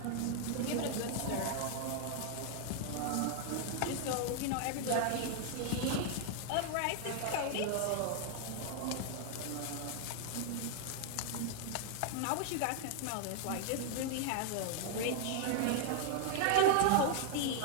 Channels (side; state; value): both; different; correlation 0.00